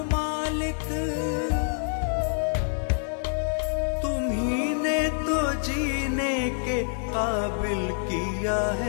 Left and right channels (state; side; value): silent; right; digital silence